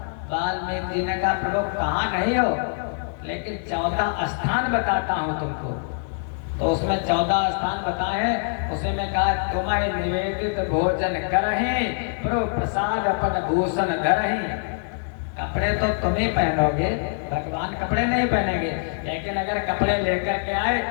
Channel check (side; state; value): right; silent; digital silence